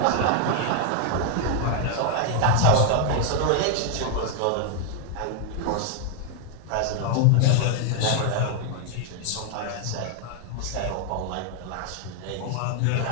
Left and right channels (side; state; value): both; different; correlation 0.00